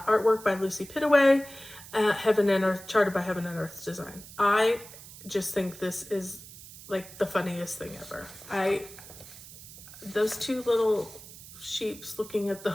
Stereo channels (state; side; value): noise; right; hiss, 16 dB below the sound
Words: by Lucy Pittaway, Heaven and Earth, charted by Heaven and Earth Design. I just think this is like the funniest thing ever. Those two little sheeps looking at